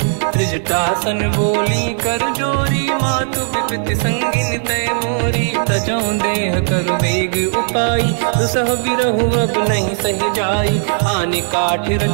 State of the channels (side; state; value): left; silent; digital silence